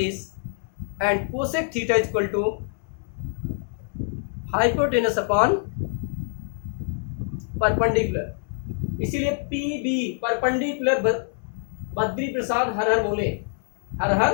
and cosec theta equal to hypotenuse upon perpendicular. इसीलिए P B perpendicular Badri Prasad हर हर बोले, हर हर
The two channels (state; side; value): silent; right; digital silence